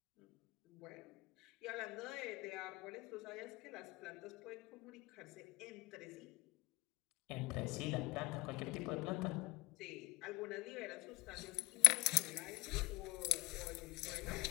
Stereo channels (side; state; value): right; quieter; 21.0 dB